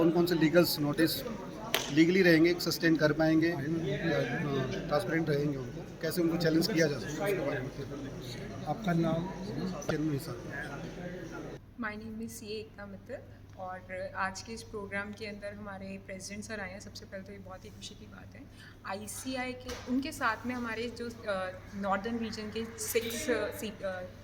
कौन से लीगल्स नोटिस लीगली रहेंगे, सस्टेन कर पाएंगे या ट्रांसपेरेंट रहेंगे, उनको कैसे उनको चैलेंज किया जा सकता है, उसके बारे में। आपका नाम? माय नेम इज़ सी एकता मित्तल और आज के इस प्रोग्राम के अंदर हमारे प्रेसिडेंट सर आए हैं। सबसे पहले तो ये बहुत ही खुशी की बात है। आईसीआई के उनके साथ में हमारे जो नॉर्दर्न रीजन के 6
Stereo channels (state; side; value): identical; both; correlation 1.00